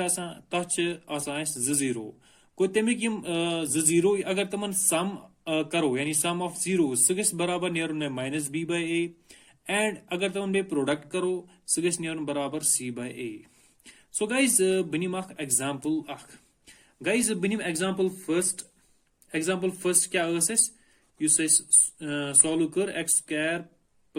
जीरो गो तमिक जीरो अगर तमन सम करो यानी सम ऑफ जीरो सह गस बराबर नेरुन में minus b by a and अगर तमन बे प्रोडक्ट करो सह गस नेरुन बराबर c bye a so guys बनिम एग्जाम्पल गाइज बनिम एग्जाम्पल फर्स्ट क्या सॉल्व कर x square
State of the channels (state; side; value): identical; both; correlation 1.00